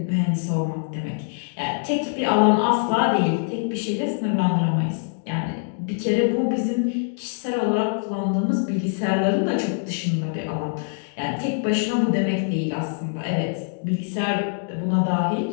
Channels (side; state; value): right; silent; 63 dB below the other